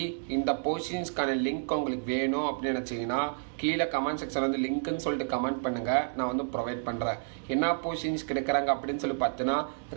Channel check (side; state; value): left; silent; digital silence